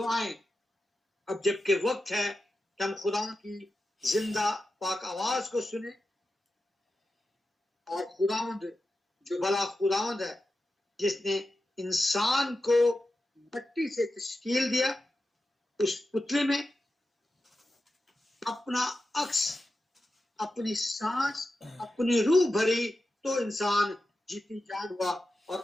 اب جبکہ وقت ہے کہ ہم خداوند کی زندہ پاک آواز کو سنیں، اور خداوند جو بھلا خداوند ہے جس نے انسان کو مٹی سے تشکیل دیا، اس پتلے میں اپنا عکس، اپنی سانس، اپنی روح بھری تو انسان جیتی جان ہوا. اور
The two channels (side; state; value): both; normal; correlation 0.91